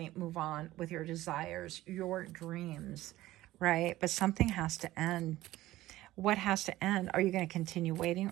move on with your desires, your dreams, right? But something has to end. What has to end? Are you going to continue waiting,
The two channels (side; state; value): left; quieter; 16.1 dB